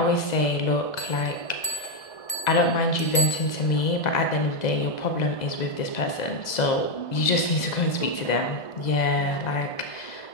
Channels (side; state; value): right; late; 2.0 ms